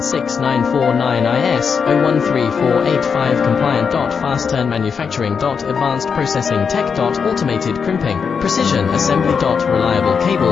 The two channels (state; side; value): quieter; right; 6.1 dB